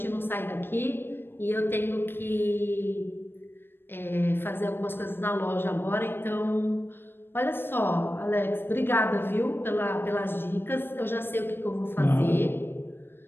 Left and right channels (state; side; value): late; right; 0.10 ms